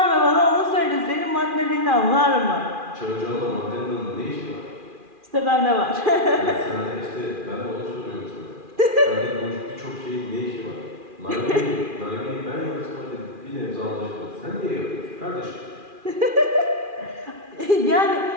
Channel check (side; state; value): left; late; 2.4 ms